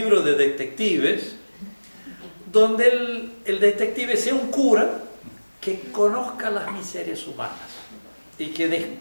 de detectives, donde el detective sea un cura que conozca las miserias humanas y que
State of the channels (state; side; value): inverted; both; correlation -1.00